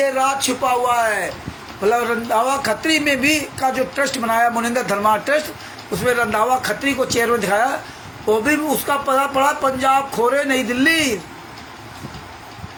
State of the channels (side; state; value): both; identical; correlation 1.00